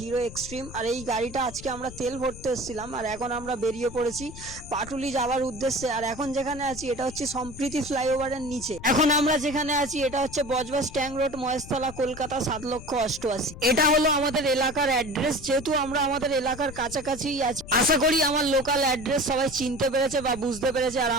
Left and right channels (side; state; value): left; noise; rumble, 14 dB below the sound